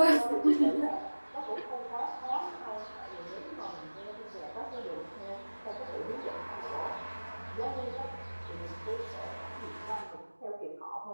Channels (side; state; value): both; inverted; correlation -1.00